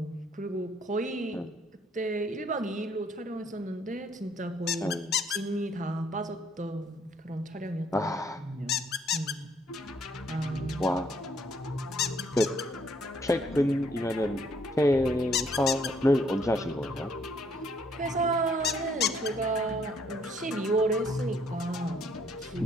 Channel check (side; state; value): both; normal; correlation 0.67